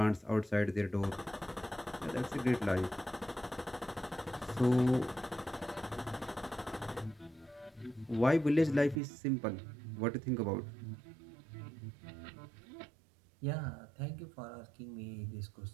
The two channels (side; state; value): left; drops out; at 9.0 s